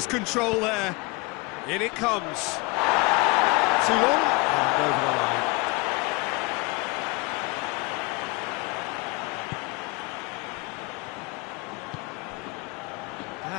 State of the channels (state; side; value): quieter; right; 26.5 dB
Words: control there. In it comes. Too long, and over the line.